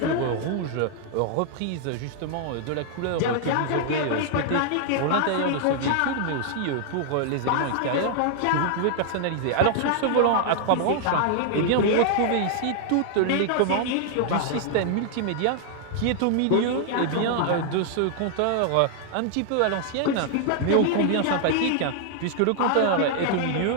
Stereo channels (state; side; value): different; both; correlation 0.00